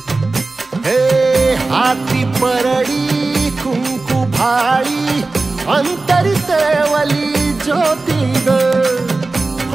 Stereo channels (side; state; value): left; quieter; 3.5 dB